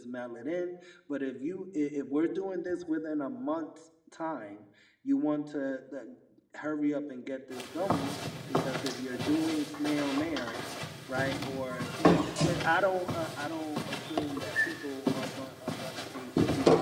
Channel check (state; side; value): identical; both; correlation 1.00